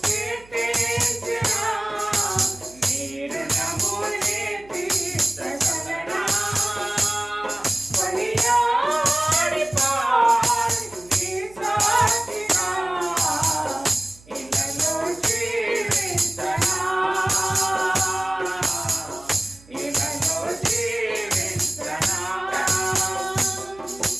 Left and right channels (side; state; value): right; noise; hum, 25 dB below the sound